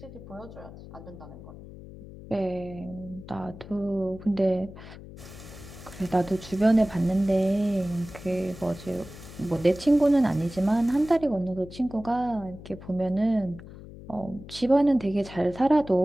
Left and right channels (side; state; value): left; noise; hum, 15 dB below the sound